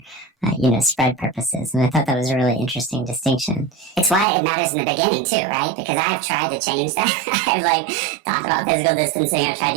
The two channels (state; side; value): drops out; left; at 4.2 s